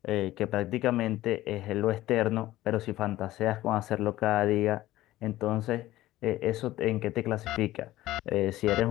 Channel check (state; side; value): quieter; right; 15.8 dB